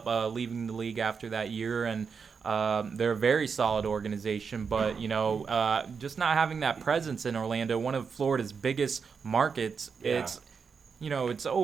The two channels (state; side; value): quieter; left; 5.8 dB